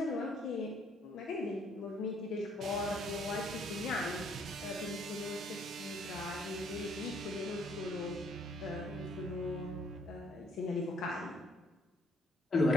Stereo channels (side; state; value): both; normal; correlation 0.65